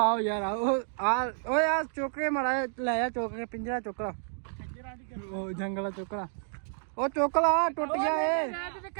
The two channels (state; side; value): silent; left; digital silence